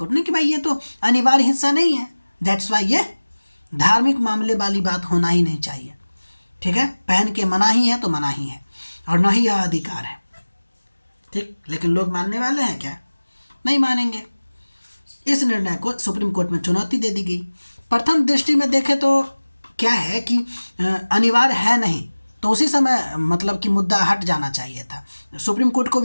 ने, कि भाई ये तो अनिवार्य हिस्सा नहीं है, दैट्स वाई ये धार्मिक मामले वाली बात होना ही नहीं चाहिए। ठीक है, पहन के मना ही है तो मना ही है, और ना ही यह अधिकार है। ठीक, लेकिन लोग मानने वाले हैं क्या? नहीं मानेंगे। इस निर्णय को सुप्रीम कोर्ट में चुनौती दे दी गई। प्रथम दृष्टि में देखें तो क्या है कि अनिवार्य है नहीं, तो उसी समय मतलब कि मुद्दा हट जाना चाहिए था, सुप्रीम कोर्ट को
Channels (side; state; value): both; inverted; correlation -1.00